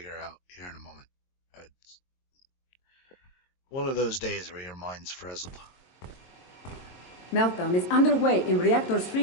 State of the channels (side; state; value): right; late; 22 ms